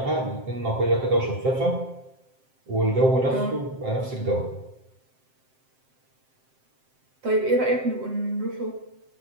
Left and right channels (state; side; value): late; left; 7.7 ms